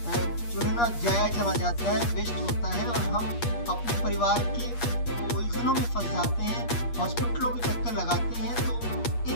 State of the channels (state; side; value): late; right; 8.5 ms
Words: जो है ना ज़ाया चला जाता है, वेस्ट होता है और हम अपने परिवार के उलझनों में फँस जाते हैं, हॉस्पिटलों के चक्कर लगाते हैं। तो